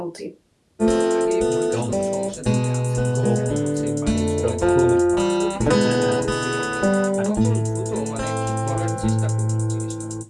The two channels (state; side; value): identical; both; correlation 1.00